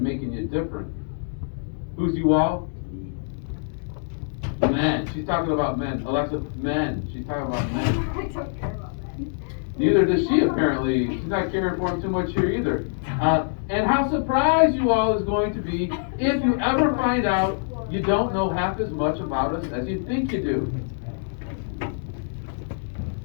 making you different. Who's you all? Men. She's talking about men. Alexa, men. She's talking about men. I don't care about men. Neither does she, apparently. She's not caring for him too much here either. And how surprised you all is going to be if you ever find out you don't know half as much about us as you think you do.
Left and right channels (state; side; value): silent; right; digital silence